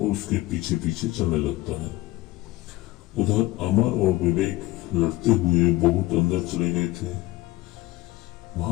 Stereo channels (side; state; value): right; quieter; 18.4 dB